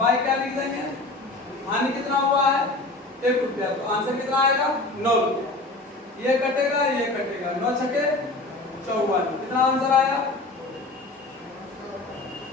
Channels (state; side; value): quieter; right; 3.0 dB